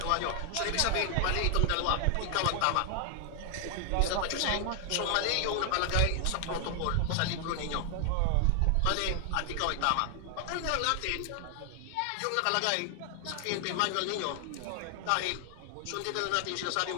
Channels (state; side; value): different; both; correlation 0.00